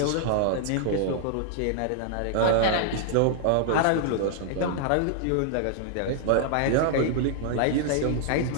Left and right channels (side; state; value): both; different; correlation -0.01